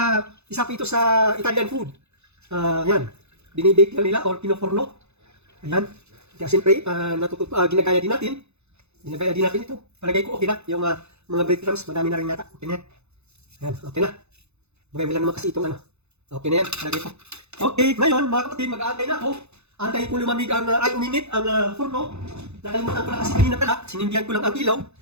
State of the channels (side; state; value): left; late; 0.81 ms